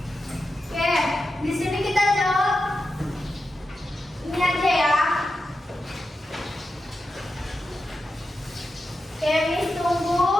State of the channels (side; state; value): both; normal; correlation 0.90